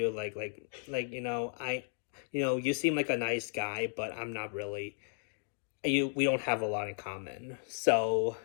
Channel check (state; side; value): silent; right; digital silence